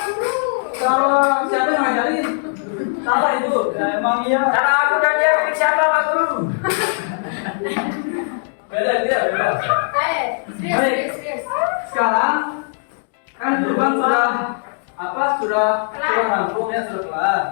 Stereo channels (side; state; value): right; silent; digital silence